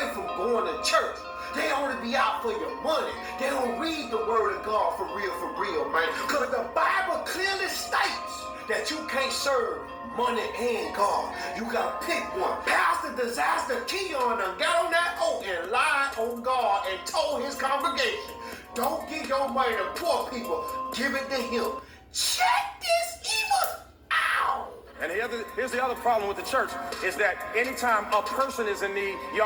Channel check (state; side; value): identical; both; correlation 1.00